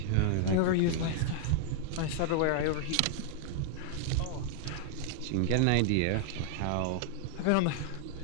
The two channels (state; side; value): different; both; correlation 0.00